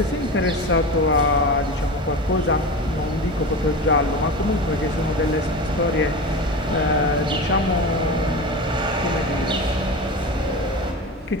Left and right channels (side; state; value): both; normal; correlation 0.27